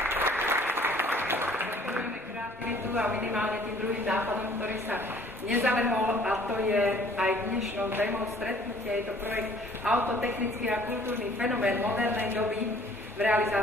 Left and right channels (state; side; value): normal; both; correlation 0.56